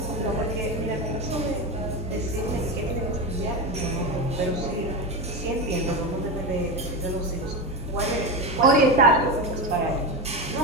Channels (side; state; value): both; normal; correlation 0.17